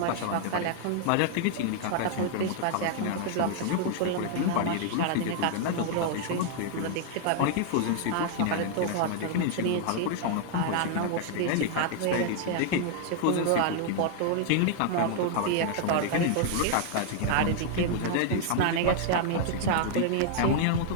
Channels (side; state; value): both; different; correlation 0.00